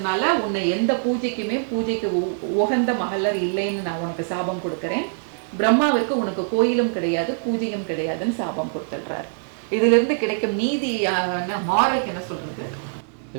உன்னை எந்த பூஜைக்கு உகந்த மகளர் இல்லைன்னு நான் உனக்கு சாபம் கொடுக்குறேன். பிரம்மாவிற்கு உனக்கு கோயிலும் கிடையாது, பூஜையும் கிடையாதுன்னு சாபம் கொடுத்துடுறாரு. இதுல இருந்து கிடைக்கும் நீதியான மாரலுக்கு என்ன சொல்றது?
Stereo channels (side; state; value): left; silent; digital silence